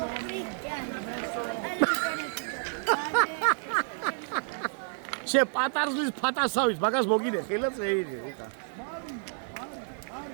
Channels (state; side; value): silent; left; digital silence